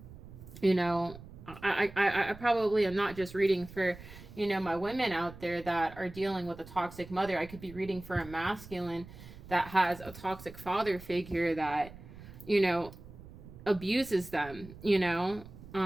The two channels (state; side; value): noise; right; rumble, 16 dB below the sound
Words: you know, I probably am not just reading for, you know, my women out there that are dealing with a toxic mother. I could be reading for a masculine that has a toxic father figure that, you know, abuses them, you know.